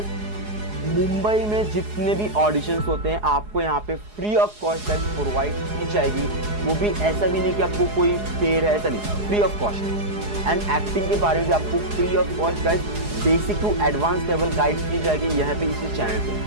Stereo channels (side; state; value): left; late; 4.8 ms